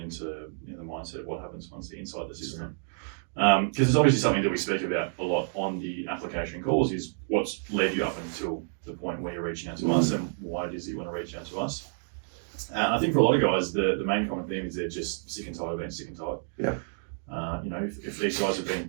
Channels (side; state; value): left; silent; digital silence